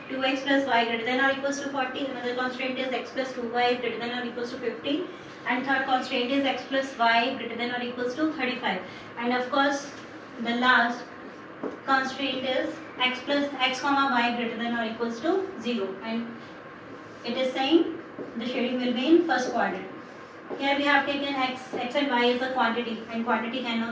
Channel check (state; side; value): identical; both; correlation 1.00